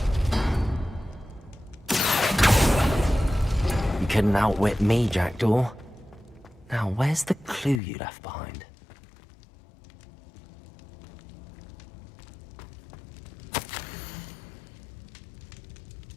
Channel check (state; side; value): drops out; right; at 7.8 s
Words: You couldn't outwit me, Jackdaw. Now, where's the clue you left behind?